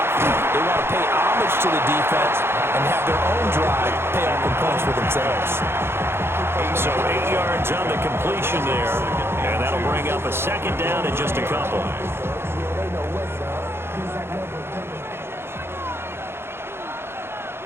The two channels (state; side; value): late; left; 0.11 ms